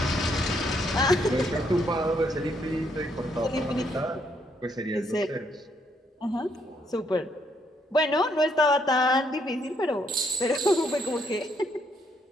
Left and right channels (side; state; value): both; normal; correlation 0.73